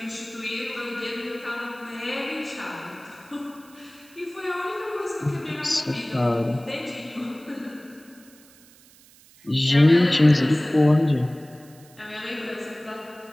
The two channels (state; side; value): noise; right; hiss, 26 dB below the sound